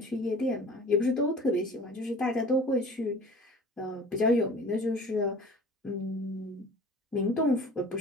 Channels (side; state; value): both; normal; correlation 0.43